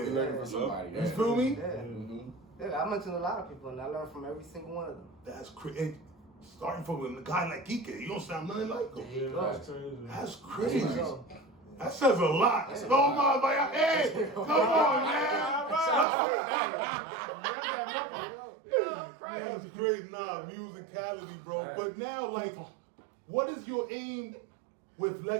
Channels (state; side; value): drops out; left; at 16.1 s